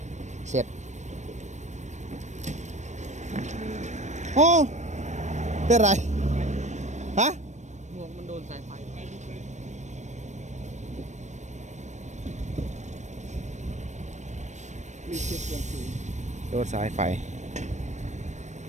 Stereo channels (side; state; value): left; late; 0.34 ms